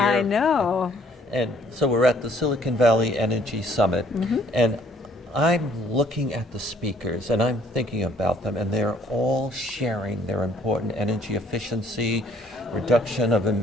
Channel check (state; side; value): normal; both; correlation 0.60